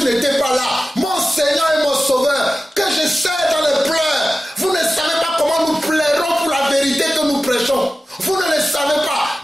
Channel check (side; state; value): both; normal; correlation 0.95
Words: n'était pas là. Mon Seigneur et mon Sauveur, que je sais dans les pleurs. Vous ne savez pas comment nous plairons pour la vérité que nous prêchons. Vous ne le savez pas,